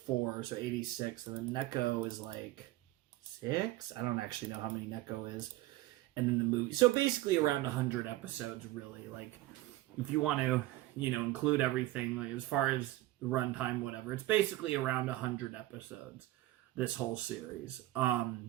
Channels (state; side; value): quieter; left; 17.0 dB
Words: so 86. And then Neko is like 6. I don't actually know how many Neko is. And then the movie. So basically around 100 episodes, really. Like, if you want to, include everything, like as far as runtime, whatever, it's basically around 100 episodes, this whole series.